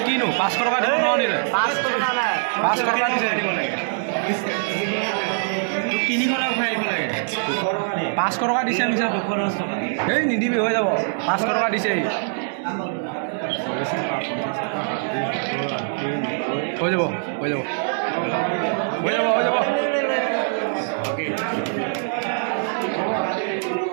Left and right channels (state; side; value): silent; left; digital silence